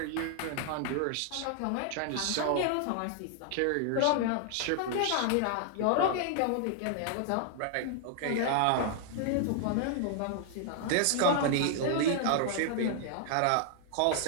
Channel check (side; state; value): both; different; correlation 0.00